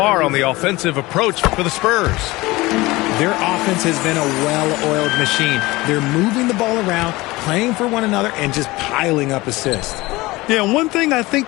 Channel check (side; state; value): right; quieter; 20.8 dB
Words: on the offensive approach for the Spurs? Their offense has been a well-oiled machine. They're moving the ball around, playing for one another, and just piling up assists. Yeah, one thing I